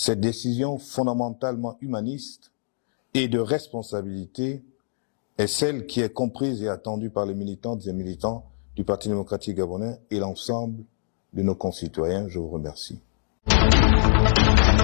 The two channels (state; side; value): silent; right; digital silence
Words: décision fondamentalement humaniste et de responsabilité est celle qui est comprise et attendue par les militantes et militants du Parti démocratique gabonais et l'ensemble de nos concitoyens. Je vous remercie.